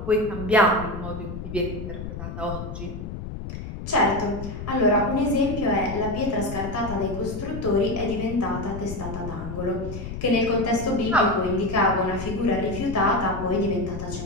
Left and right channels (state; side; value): noise; left; rumble, 8 dB below the sound